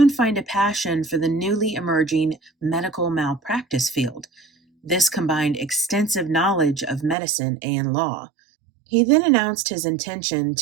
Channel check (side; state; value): left; drops out; at 7.2 s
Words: find a passion for the newly emerging medical malpractice field. This combined extensive knowledge of medicine and law. He then announced his intention